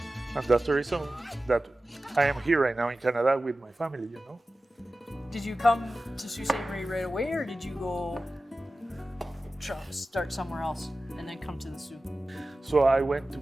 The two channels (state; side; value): normal; both; correlation 0.95